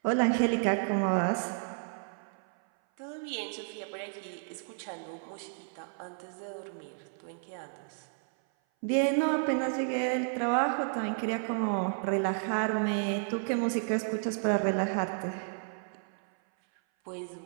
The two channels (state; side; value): silent; left; 56 dB below the other